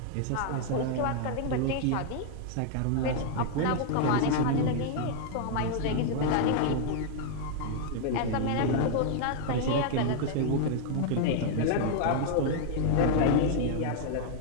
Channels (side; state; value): both; different; correlation -0.01